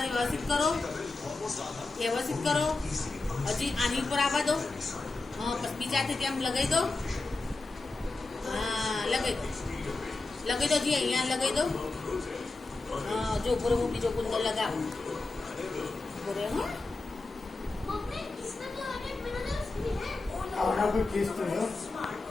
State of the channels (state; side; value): quieter; right; 3.4 dB